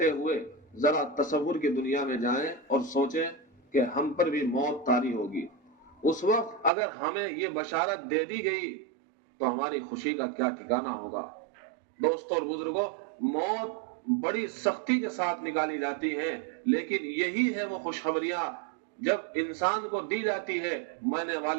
ہوئے ذرا تصور کی دنیا میں جائیں اور سوچیں کہ ہم پر بھی موت طاری ہوگی۔ اس وقت اگر ہمیں یہ بشارت دے دی گئی تو ہماری خوشی کا کیا ٹھکانہ ہوگا۔ دوستوں اور بزرگوں، موت بڑی سختی کے ساتھ نکالی جاتی ہیں، لیکن یہی ہے وہ خوشخبریاں جب انسان کو دی جاتی ہے، ماننے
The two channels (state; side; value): drops out; left; at 6.7 s